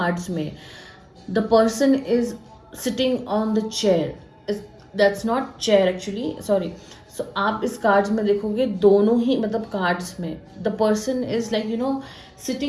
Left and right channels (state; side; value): identical; both; correlation 1.00